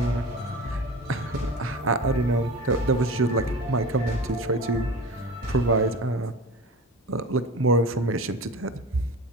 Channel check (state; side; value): normal; both; correlation 0.33